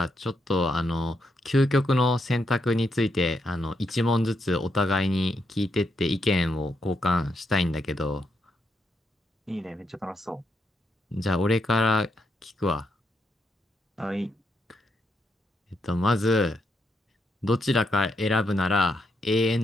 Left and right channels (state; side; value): normal; both; correlation 0.80